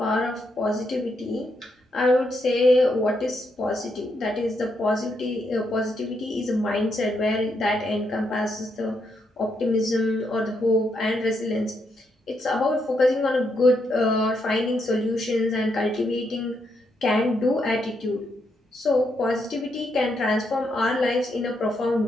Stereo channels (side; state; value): both; normal; correlation 0.79